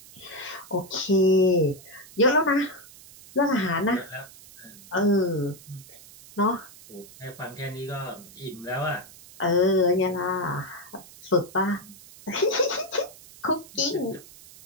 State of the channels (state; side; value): noise; right; hiss, 20 dB below the sound